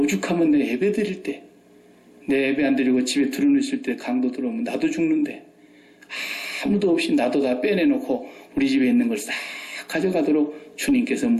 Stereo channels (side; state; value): both; identical; correlation 1.00